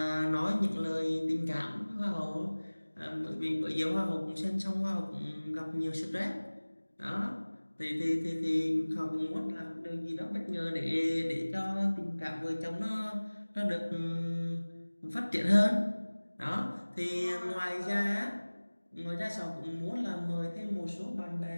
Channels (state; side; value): inverted; both; correlation -1.00